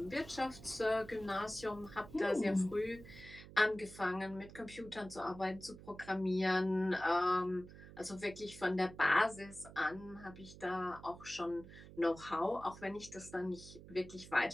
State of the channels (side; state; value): right; noise; hum, 17 dB below the sound